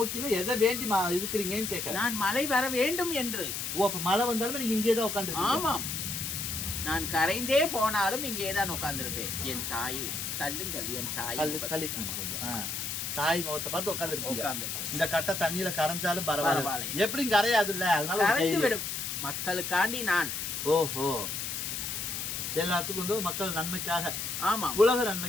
எதை வேண்டி இருக்கிறீங்கன்னு கேட்கல. நான் மழை வர வேண்டும் என்று. ஓ, அப்ப மழை வந்தாலும் நீங்க இங்கே தான் உட்காந்து? ஆமாம், நான் கரைந்தே போனாலும் இங்கே தான் உட்கார்ந்துருப்பேன். என் தாயை தள்ளுங்கள், என் தாய் தாய் முகத்தை பார்த்து உட்காந்து. இந்த கட்டை தண்ணியில கரைஞ்சாலும் பரவாயில்ல, எப்படியும் கரையாது இல்ல, அதனால கரைந்து விடும். மக்களுக்காண்டி நான். ஓஹோ, எல்லாத்துக்கும் வந்து மக்கள் நன்மைக்காக. ஆமா, உலக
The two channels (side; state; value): left; noise; hiss, 3 dB below the sound